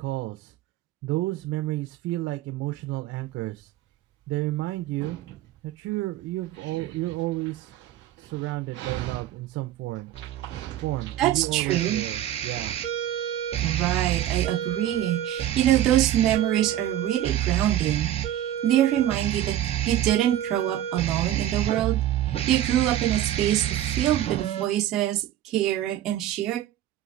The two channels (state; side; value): quieter; left; 12.5 dB